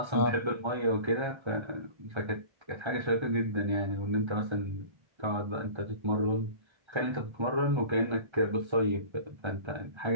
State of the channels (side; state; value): left; late; 1.3 ms